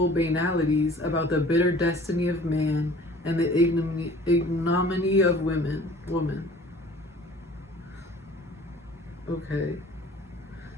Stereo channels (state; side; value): normal; both; correlation 0.49